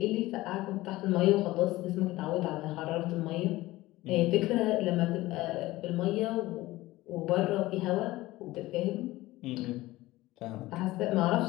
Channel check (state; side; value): quieter; right; 18.1 dB